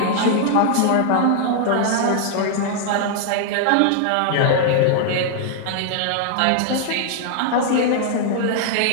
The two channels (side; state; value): both; different; correlation 0.00